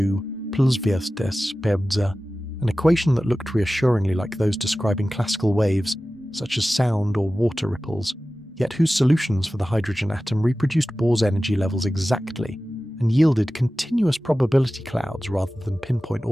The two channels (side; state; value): both; normal; correlation 0.95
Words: plus vs pebza, an equation that looked reassuringly like those describing classical waves, such as sound or water ripples, yet whose solutions for the hydrogen atom reproduced Bohr's energy levels exactly and yielded continuous probability clouds rather than pinpoint